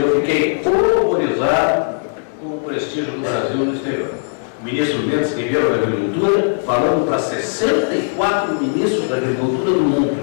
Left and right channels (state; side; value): silent; right; digital silence